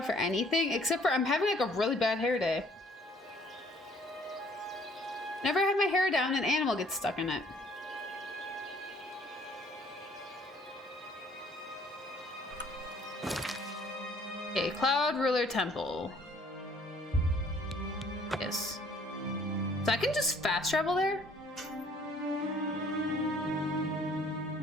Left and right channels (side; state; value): both; normal; correlation 0.59